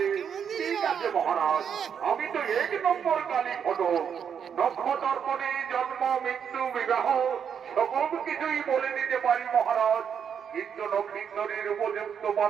ঠিক আছে মহারাজ, আমি তো এক নম্বর কালী ঘটক। নক্ষতর্পণে জন্ম মৃত্যু বিবাহ সকল কিছুই বলে দিতে পারি মহারাজ, কিন্তু নক্ষিন্দরের উপযুক্ত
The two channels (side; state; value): left; quieter; 7.6 dB